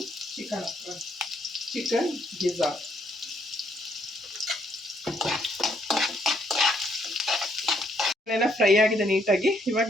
ಚಿಕನ್ ಗಿಜಾರ್ಡ್ ಫ್ರೈ ಆಗಿದೆ ನೀಟಾಗಿ. ಇವಾಗ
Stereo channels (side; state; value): both; normal; correlation 0.70